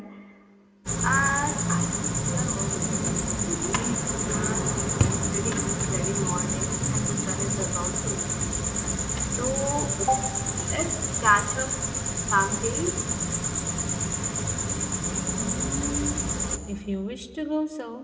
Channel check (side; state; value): both; identical; correlation 1.00